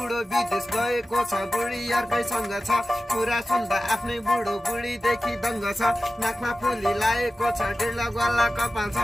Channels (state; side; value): normal; both; correlation 0.95